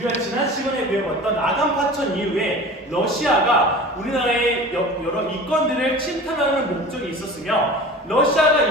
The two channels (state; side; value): normal; both; correlation 0.38